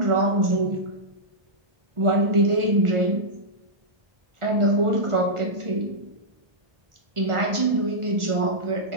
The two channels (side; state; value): left; late; 1.4 ms